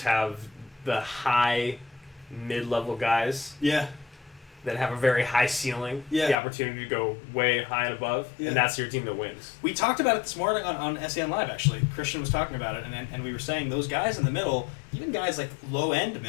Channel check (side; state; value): right; drops out; at 6.4 s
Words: have the high mid-level guys Yeah. that have a very high ceiling, Yeah. the opportunity to go way high and above, Yeah. and that's your team that wins. We talked about it this morning on SEN Live, actually. Christian was talking about it, and we were saying those guys in the middle, even guys like low-end